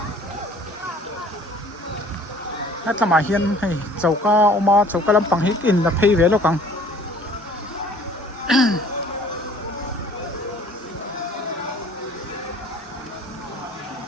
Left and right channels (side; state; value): both; normal; correlation 0.52